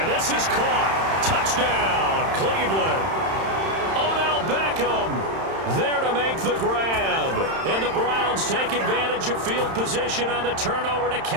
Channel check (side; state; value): left; late; 31 ms